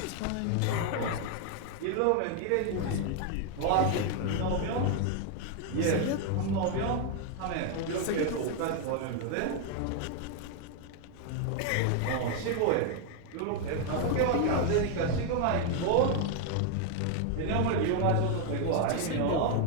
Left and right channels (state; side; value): different; both; correlation 0.01